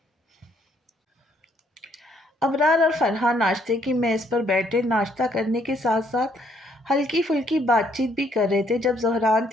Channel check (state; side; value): normal; both; correlation 0.68